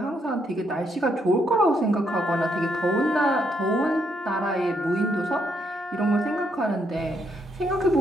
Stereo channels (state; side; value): normal; both; correlation 0.75